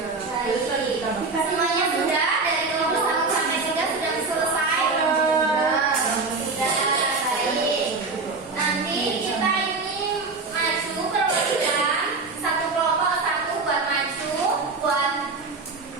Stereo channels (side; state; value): left; quieter; 3.9 dB